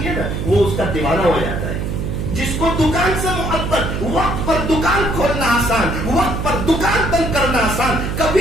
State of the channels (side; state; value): right; noise; hum, 3 dB below the sound